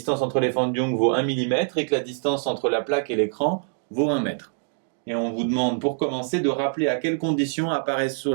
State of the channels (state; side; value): silent; left; 62 dB below the other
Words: entre les Fan Dung vaut 1 mm et que la distance entre la plaque et l'écran vaut 1 mètre. Et on vous demande pour commencer de rappeler à quelles conditions apparaissent sur